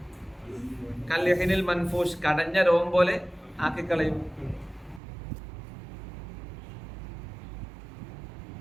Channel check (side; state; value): left; drops out; at 5.0 s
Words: കല്യഹിനിൽ മൻഫൂഷ്, കടഞ്ഞ രോം പോലെ ആക്കിക്കളയും.